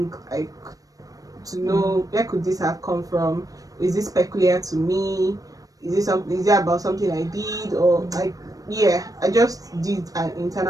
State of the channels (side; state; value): left; late; 0.17 ms